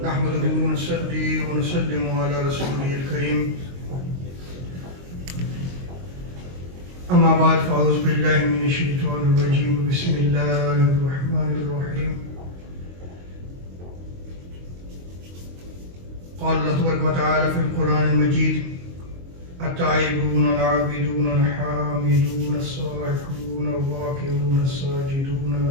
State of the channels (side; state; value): left; late; 22 ms